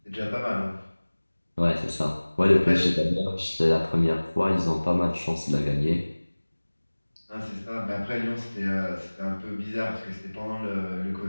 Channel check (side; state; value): both; inverted; correlation -1.00